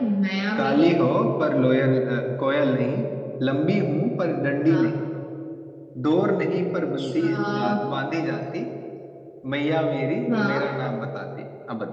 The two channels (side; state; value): both; identical; correlation 1.00